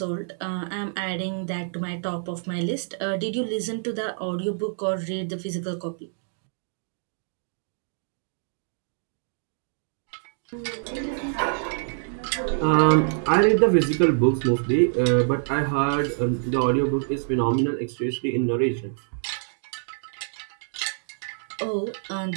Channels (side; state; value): left; silent; digital silence